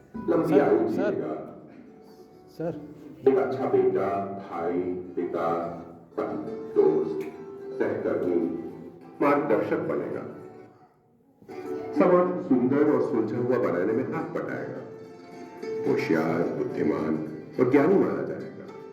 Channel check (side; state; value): both; identical; correlation 1.00